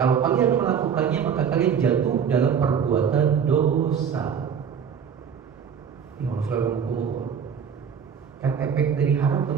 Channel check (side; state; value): left; quieter; 7.3 dB